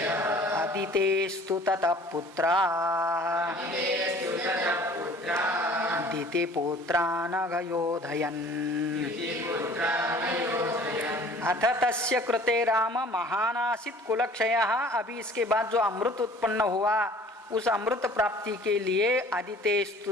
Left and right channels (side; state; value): both; normal; correlation 0.50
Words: अदितेस्तु ततः पुत्रा दितिपुत्रानघयोधयन्। अथ तस्य कृते राम महानासीत् कुलक्षयः। अभी इसके बाद जो अमृत उत्पन्न हुआ उस अमृत प्राप्ति के लिए